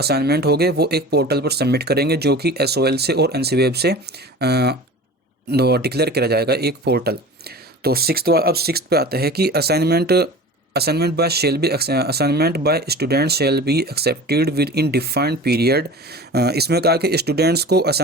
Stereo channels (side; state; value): both; normal; correlation 0.37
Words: होंगे वो एक पोर्टल पर सबमिट करेंगे, जो कि एसओएल से और एनसीवेब से डिक्लेयर किया जाएगा, एक पोर्टल। तो सिक्स्थ पे आता है कि assignment bye student shall be accepted with in defined period. इसमें कहा कि स्टूडेंट्स को